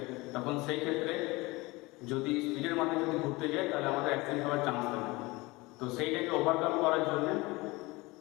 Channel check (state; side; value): quieter; right; 22.6 dB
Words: তখন সেই ক্ষেত্রে যদি স্পিডের মাধ্যমে যদি ঘুরতে যাই তাহলে আমাদের অ্যাক্সিডেন্ট হওয়ার চান্স থাকে। তো সেইটাকে ওভারকাম করার জন্য